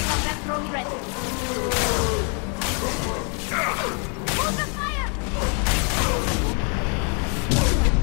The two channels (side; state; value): right; quieter; 38.6 dB